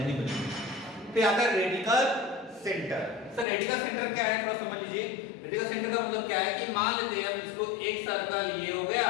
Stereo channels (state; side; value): drops out; right; at 3.5 s